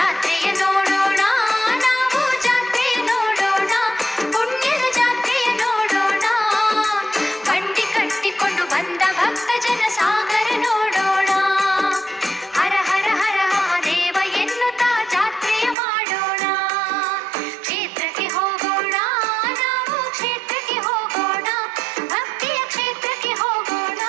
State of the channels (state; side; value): drops out; left; at 15.8 s